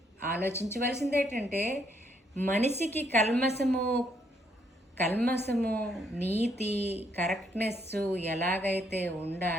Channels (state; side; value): normal; both; correlation 0.72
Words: ఆలోచించవలసింది ఏంటంటే మనిషికి కల్మసము నీతి కరెక్ట్నెస్ ఎలాగైతే